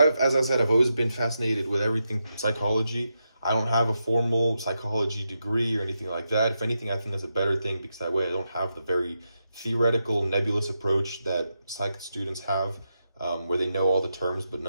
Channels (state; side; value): inverted; both; correlation -0.86